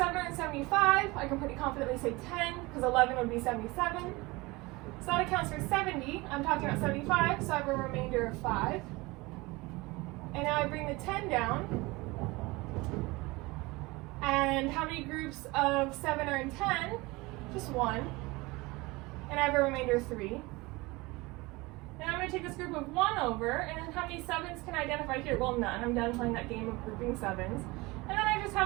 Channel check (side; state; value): left; quieter; 22.9 dB